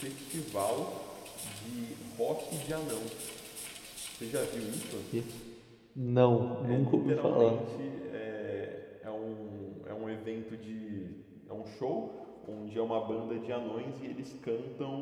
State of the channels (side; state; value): both; identical; correlation 1.00